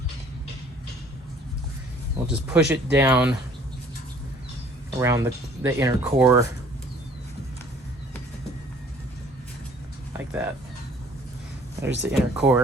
We'll just push it down around the inner core like that. There's the inner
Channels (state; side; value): normal; both; correlation 0.56